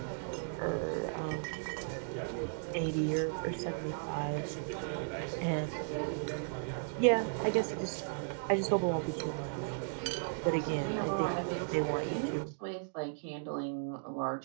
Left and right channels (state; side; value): silent; left; digital silence